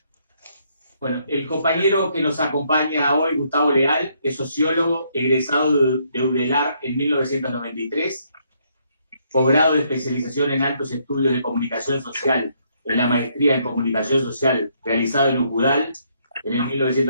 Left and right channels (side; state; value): both; inverted; correlation -0.71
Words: Bueno, el compañero que nos acompaña hoy, Gustavo Leal, es sociólogo egresado de UDELAR en 1993, posgrado de especialización en altos estudios de comunicación social en la maestría en comunicación social realizado en UCUDAL en el